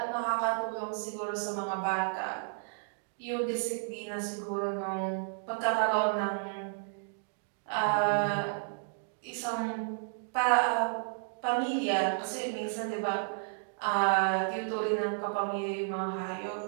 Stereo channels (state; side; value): silent; left; digital silence